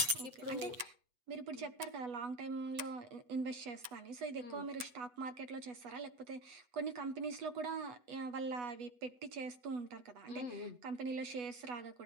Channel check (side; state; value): left; late; 7.9 ms